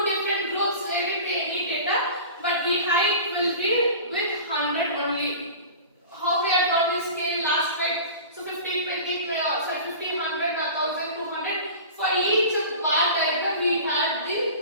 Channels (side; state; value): both; inverted; correlation -0.37